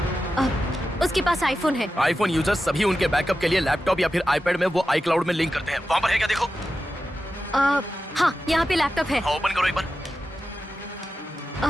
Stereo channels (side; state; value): both; normal; correlation 0.92